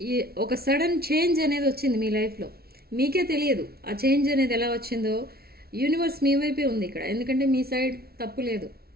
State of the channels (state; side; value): late; left; 0.45 ms